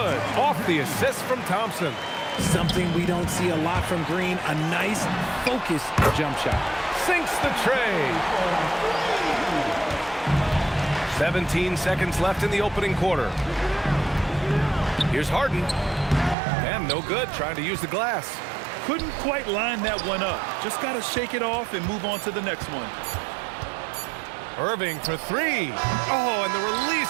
Off the assist from Thompson. Something we don't see a lot from Green. A nice, focused jump shot. Sinks the tray. 17 seconds left in the opening quarter. Here's Harden. And no good, trying to use the glass. Couldn't quite line that one up. Just got to shake it off and move on to the next one. Irving for 3. Oh, and the release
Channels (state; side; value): drops out; left; at 16.4 s